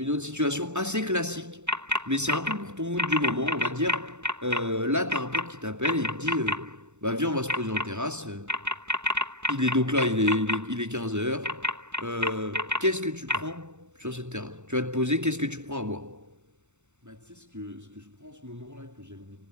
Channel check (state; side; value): late; left; 0.83 ms